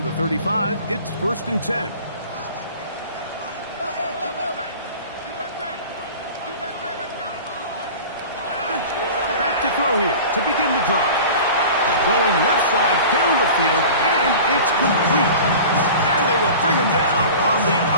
the 35, it's 1st and 10. Back to throw here to begin the drive. Going left side down the field, and it's complete. And they will bring him down on the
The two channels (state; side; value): inverted; both; correlation -0.38